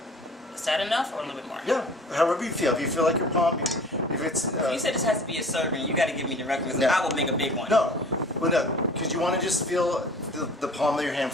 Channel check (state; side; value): normal; both; correlation 0.46